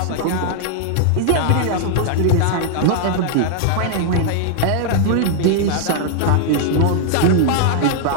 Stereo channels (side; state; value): both; different; correlation -0.01